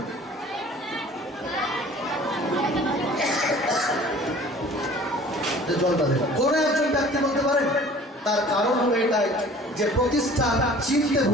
কোন একজন ব্যক্তি বলতে পারেন? তার কারণ হলো এটাই যে প্রতিষ্ঠান চিনতে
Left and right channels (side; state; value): both; normal; correlation 0.48